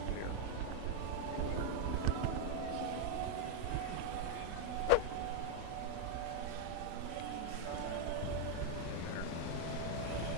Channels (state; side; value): different; both; correlation 0.00